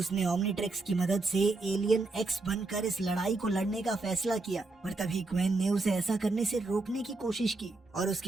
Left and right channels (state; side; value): quieter; left; 3.3 dB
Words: ओमनीट्रिक्स की मदद से एलियन एक्स बनकर इस लड़ाई को लड़ने का फैसला किया, पर तभी ग्वेन ने उसे ऐसा करने से रोकने की कोशिश की और